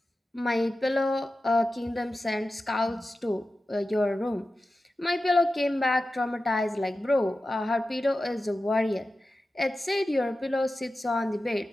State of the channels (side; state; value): both; normal; correlation 0.93